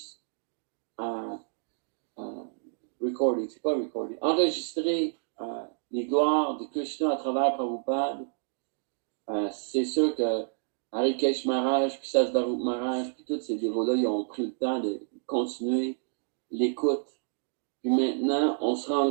recording, c'est quoi recording? Enregistrer les gloires de Krishna à travers Prabhupada. C'est sûr que Harikesh Maharaj, puis Sasvarup Maharaj, puis tous ces dévots-là, ils ont pris le temps de continuer l'écoute. Puis maintenant, on se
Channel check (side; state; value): left; silent; digital silence